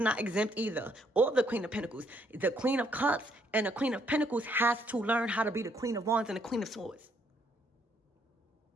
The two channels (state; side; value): normal; both; correlation 0.70